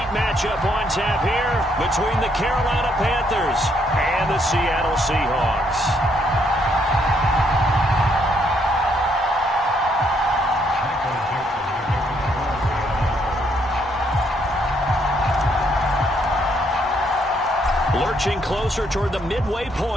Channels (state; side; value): normal; both; correlation 0.72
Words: matchup on tap here between the Carolina Panthers and the Seattle Seahawks. Lurching closer toward the midway